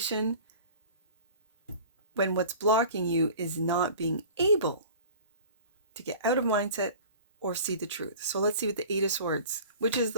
when what's blocking you is not being able to get out of mindset or see the truth. So let's see what the Eight of Swords, which is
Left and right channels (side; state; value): both; inverted; correlation -0.42